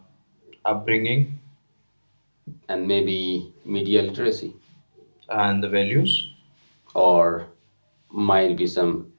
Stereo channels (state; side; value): inverted; both; correlation -1.00